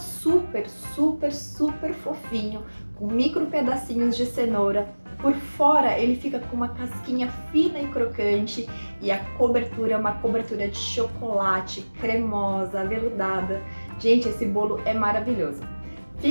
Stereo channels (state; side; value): inverted; both; correlation -1.00